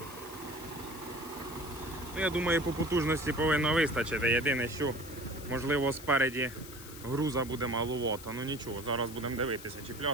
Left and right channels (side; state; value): left; noise; hiss, 15 dB below the sound